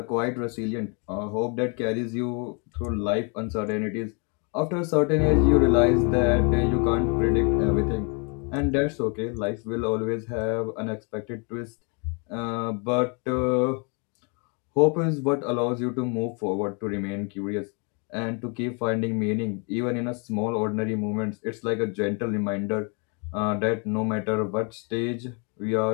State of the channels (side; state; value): right; quieter; 35.4 dB